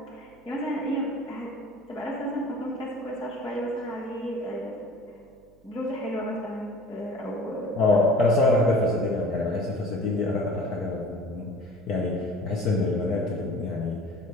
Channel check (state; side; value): noise; right; hum, 30 dB below the sound